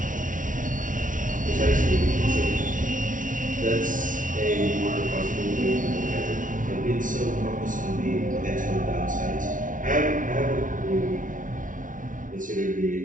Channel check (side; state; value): left; late; 0.38 ms